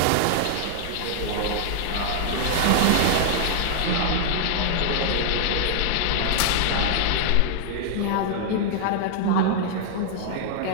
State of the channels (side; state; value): both; different; correlation -0.01